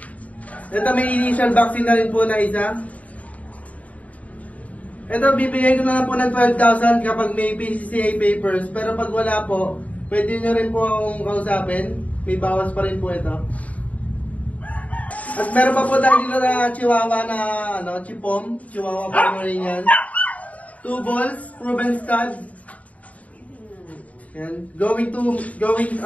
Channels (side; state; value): right; late; 0.069 ms